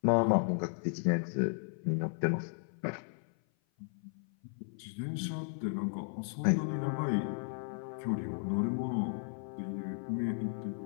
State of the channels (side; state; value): right; silent; 55 dB below the other